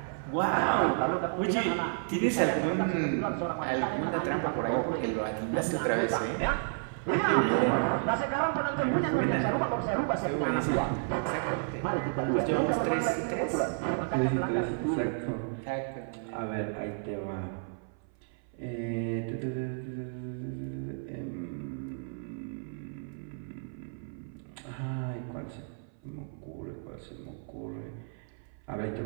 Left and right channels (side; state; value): left; silent; 57 dB below the other